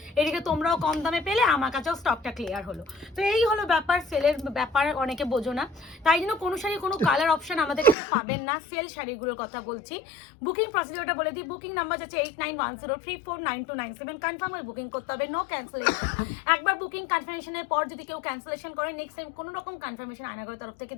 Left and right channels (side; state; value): right; drops out; at 8.0 s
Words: এদিকে তোমরাও কম দামে পেলে, আমার কাছেও স্টকটা ক্লিয়ার হলো। তো এই হলো ব্যাপার, সেলের ব্যাপার অনেকে বোঝো না, তাই জন্য কোনো শাড়ি কোনো কালার অপশন আমাদের কাছে পাবেন না। সেল শাড়িগুলোর কথা বলছি। বুকিং প্রসিডিওরটা বলে দিই। বুকিং নাম্বার আছে 8910349297। কনফার্ম হয়ে বুকিং করতে হবে, নো ক্যান্সেলেশন। একবার বুকিং কনফার্মেশনের পর যদি কেউ ক্যান্সেলেশন করে, নেক্সট টাইম কোনো রকম কনফার্মেশন আয়নাগরের তরফ থেকে